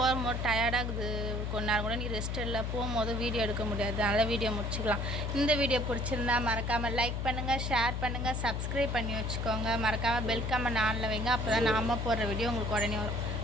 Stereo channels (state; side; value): noise; left; hum, 2 dB below the sound